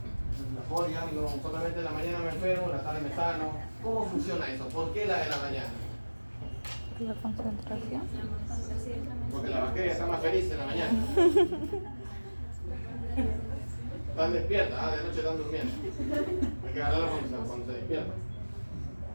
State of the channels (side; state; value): both; inverted; correlation -1.00